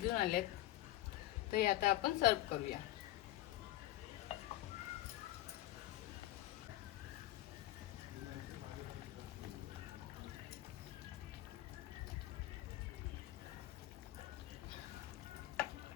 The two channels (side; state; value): right; quieter; 15.6 dB